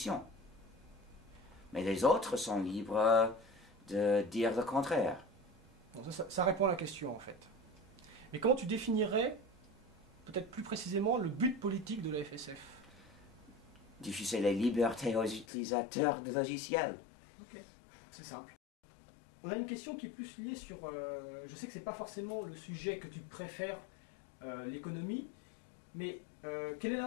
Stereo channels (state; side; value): drops out; right; at 15.5 s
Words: Mais les autres sont libres de dire le contraire. Bon, ça répond à la question en fait. Mais comment tu définirais, peut-être plus précisément, le but politique de la FSF? Diffuser les libertés aux utilisateurs de logiciels. Ok, c'est simple. On a une question qui est plus liée sur... je sais que c'est pas forcément le sujet que tu préfères, l'économie, mais quel est